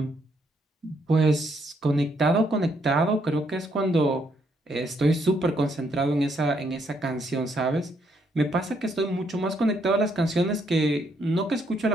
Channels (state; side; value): normal; both; correlation 0.73